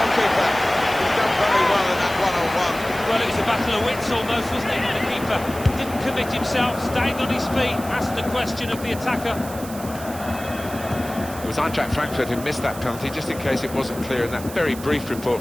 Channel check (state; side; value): noise; right; hiss, 14 dB below the sound